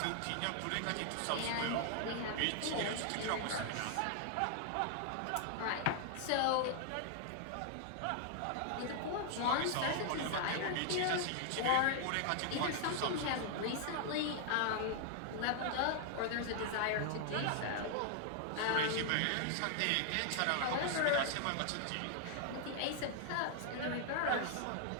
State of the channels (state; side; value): different; both; correlation 0.00